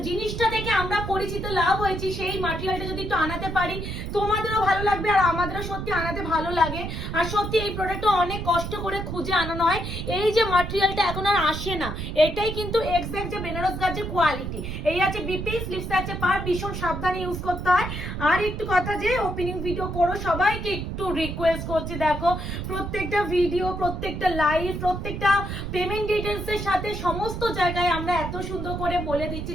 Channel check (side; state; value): right; noise; rumble, 5 dB below the sound